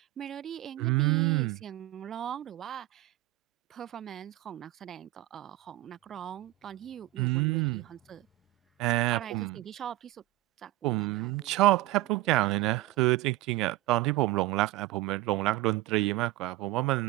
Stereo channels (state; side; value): quieter; left; 17.4 dB